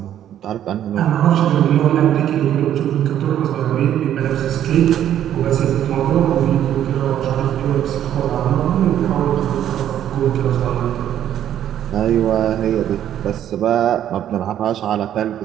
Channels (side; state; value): left; quieter; 10.8 dB